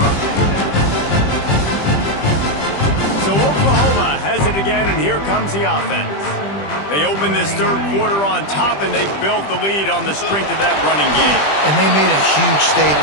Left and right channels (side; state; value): right; late; 20 ms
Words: So Oklahoma has it again, and here comes the offense. They opened this third quarter on top, and they built the lead on the strength of that running game. And they made a huge